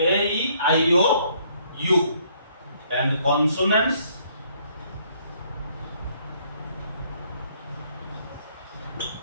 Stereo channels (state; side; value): inverted; both; correlation -0.66